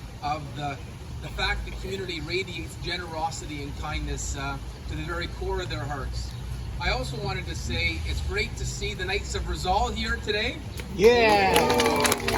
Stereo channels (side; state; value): both; identical; correlation 1.00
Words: of the fact the community radiates generosity and kindness to the very core of their hearts. I also wanted to say it's great to see the Knights of Rizal here today. Yeah!